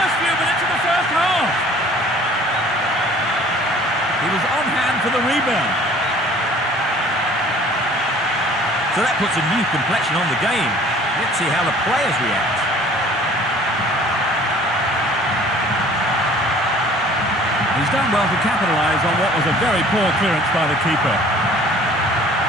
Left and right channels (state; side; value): normal; both; correlation 0.51